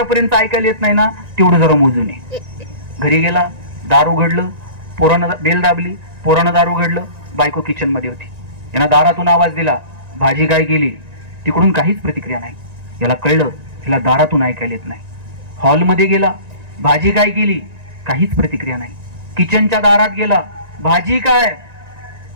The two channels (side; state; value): left; late; 1.9 ms